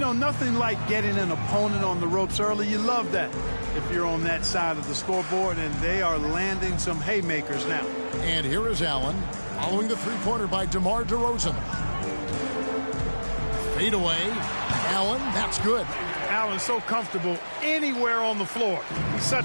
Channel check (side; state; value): both; inverted; correlation -1.00